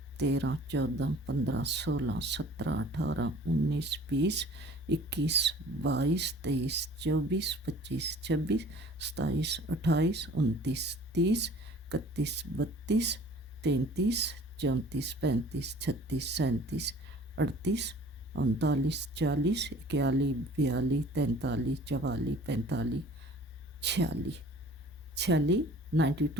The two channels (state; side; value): normal; both; correlation 0.49